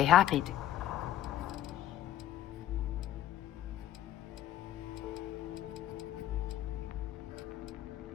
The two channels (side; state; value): right; quieter; 13.0 dB